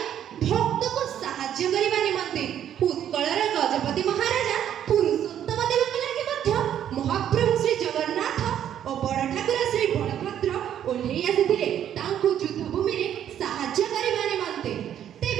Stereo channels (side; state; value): left; quieter; 10.2 dB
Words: ଭକ୍ତକୁ ସାହାଯ୍ୟ କରିବା ନିମନ୍ତେ। ଉତ୍କଳର ଗଜପତି ମହାରାଜା ପୁରୁଷୋତ୍ତମ ଦେବଙ୍କ ଲାଗି ମଧ୍ୟ ମହାପ୍ରଭୁ ଶ୍ରୀ ଜଗନ୍ନାଥ ଓ ବଡ଼ ଠାକୁର ଶ୍ରୀ ବଳଭଦ୍ର ଓହ୍ଲେଇ ଆସିଥିଲେ ତାଙ୍କୁ ଯୁଦ୍ଧଭୂମିରେ ସାହାଯ୍ୟ କରିବା ନିମନ୍ତେ।